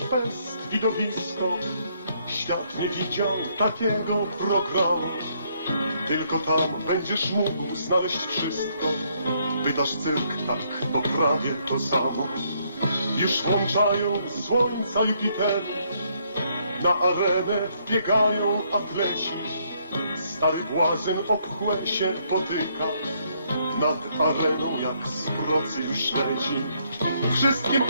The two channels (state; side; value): inverted; both; correlation -0.71